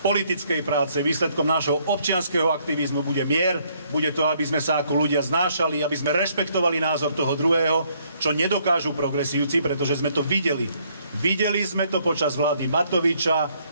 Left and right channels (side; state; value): both; inverted; correlation -0.68